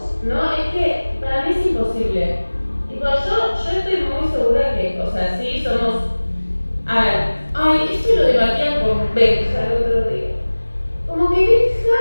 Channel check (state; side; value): inverted; both; correlation -1.00